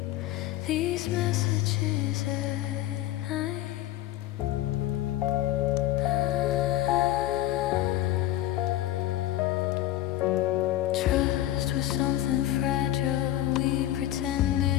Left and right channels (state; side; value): quieter; right; 14.1 dB